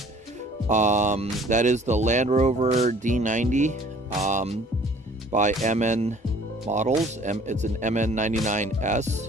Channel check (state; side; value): normal; both; correlation 0.54